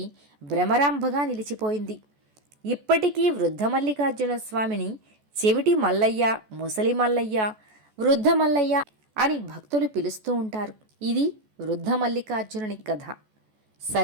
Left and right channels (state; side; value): late; left; 14 ms